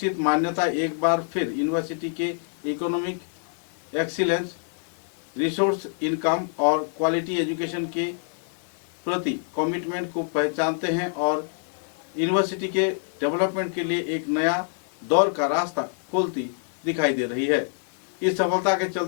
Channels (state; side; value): silent; right; digital silence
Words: मान्यता एक बार फिर यूनिवर्सिटी के इकोनॉमिक एक्सीलेंस, रिसोर्स इनकम और क्वालिटी एजुकेशन के प्रति कमिटमेंट को पहचानते हैं और यूनिवर्सिटी के डेवलपमेंट के लिए एक नया दौर का रास्ता खोलती दिखाई दे रही है। इस सफलता के